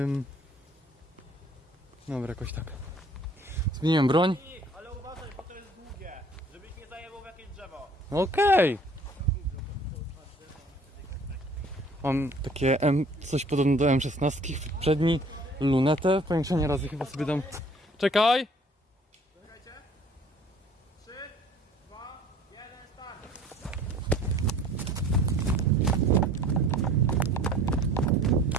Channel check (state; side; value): normal; both; correlation 0.53